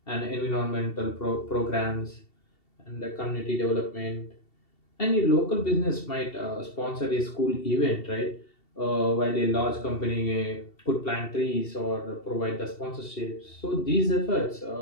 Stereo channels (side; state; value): right; late; 2.7 ms